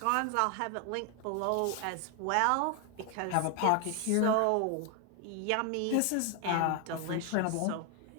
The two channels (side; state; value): both; different; correlation 0.00